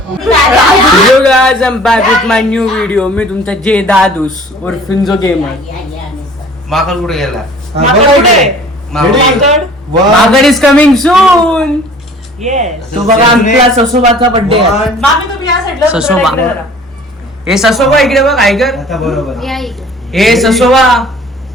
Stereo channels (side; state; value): both; normal; correlation 0.49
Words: Hello guys, I'm back with my new video. मी तुमचा जे दादूस और फिंजो गेमर. माकड कुठे गेला? माकड इज कमिंग सून. तो बघा आमच्या ससोबाचा बर्थडे आहे. ससोबा हे ससोबा इकडे बघ. ऐकर हे ससोबा.